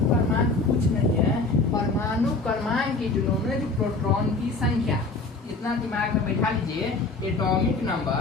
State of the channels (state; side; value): quieter; right; 3.6 dB